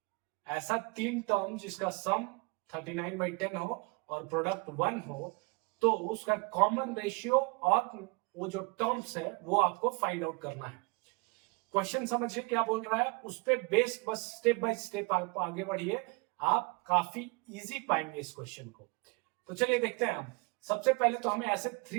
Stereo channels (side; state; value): left; quieter; 30.0 dB